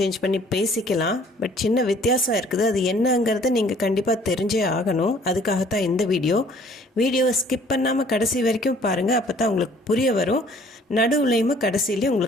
பண்ணி பேசிக்கலாம். பட் சின்ன வித்தியாசம் இருக்குது. அது என்னங்கிறது நீங்கள் கண்டிப்பாக தெரிஞ்சே ஆகணும். அதுக்காகத்தான் இந்த வீடியோவை ஸ்கிப் பண்ணாமல் கடைசி வரைக்கும் பாருங்கள். அப்போ தான் உங்களுக்கு புரிய வரும். நடுவுலையுமே கடைசியிலையும்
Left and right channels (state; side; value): normal; both; correlation 0.56